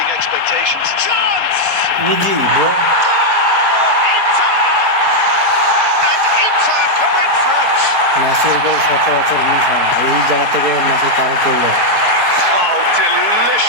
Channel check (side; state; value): left; late; 4.7 ms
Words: expectations. Chance! Easy, bro. Goal! Inter! And Inter go in front. মেসির গোল সচরাচর মিস হয় না, এই জায়গা থেকে মেসি তারও করলো। Oh,